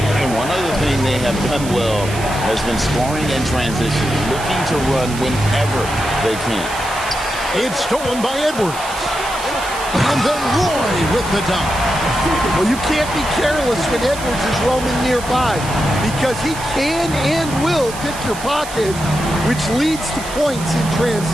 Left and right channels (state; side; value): noise; right; hiss, 12 dB below the sound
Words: And one other thing they have done well has been scoring in transition, looking to run whenever they can. It's stolen by Edwards. And then Roy with the dunk. Well, you can't be careless when Edwards is roaming nearby because he can and will pick your pocket, which leads to points in